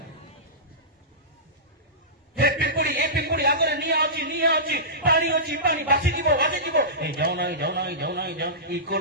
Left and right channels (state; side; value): normal; both; correlation -0.20